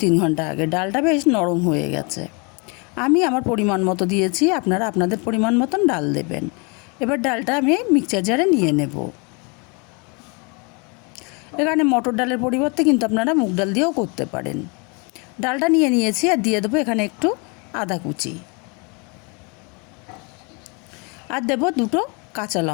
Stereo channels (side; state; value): right; quieter; 32.0 dB